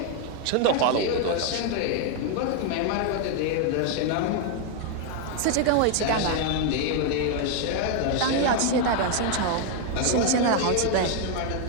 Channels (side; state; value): both; different; correlation 0.01